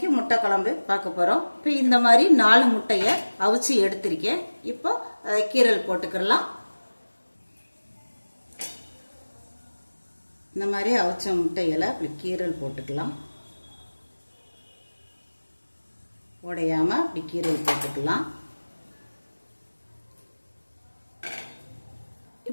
முட்டை குழம்பு பார்க்க போறோம். இப்போ இந்த மாதிரி 4 முட்டையை அவிச்சு எடுத்திருக்கேன். இப்போ அதை கீரல் போட்டுக்கலாம். இந்த மாதிரி அவிச்ச முட்டையில அப்படி கீரல் போட்டுக்கலாம். உடையாம அப்படி கீரல் போட்டுக்கலாம்.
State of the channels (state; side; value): inverted; both; correlation -1.00